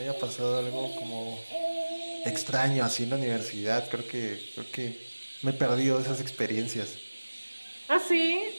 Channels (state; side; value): inverted; both; correlation -1.00